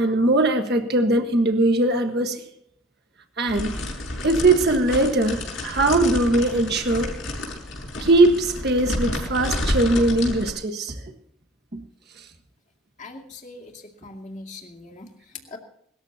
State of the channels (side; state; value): both; normal; correlation 0.42